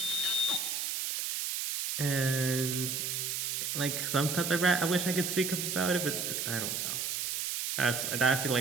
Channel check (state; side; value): noise; right; hiss, 1 dB below the sound